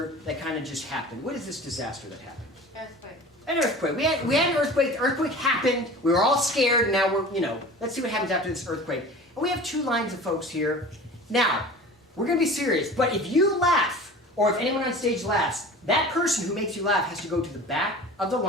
that kind of just happened. What is this disaster that happened? Earthquake. An earthquake. We had an earthquake. The earthquake happened. We were all scared. And now we're, let's see what happens after this earthquake. And we have two lines of folks here. Now, we're going to be serious. But if you laugh, or if anyone on stage laughs, that person who makes you laugh has to go to the back of the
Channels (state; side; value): normal; both; correlation 0.39